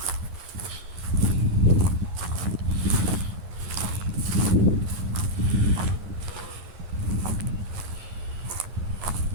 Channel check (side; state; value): left; late; 11 ms